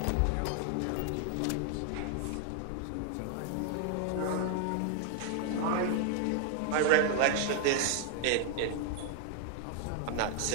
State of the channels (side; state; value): both; different; correlation 0.00